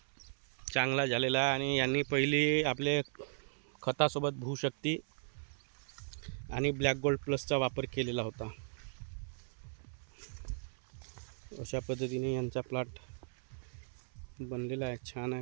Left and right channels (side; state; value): left; silent; 53 dB below the other